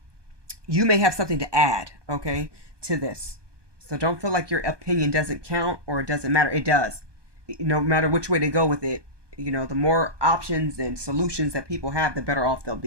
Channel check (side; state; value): left; late; 1.2 ms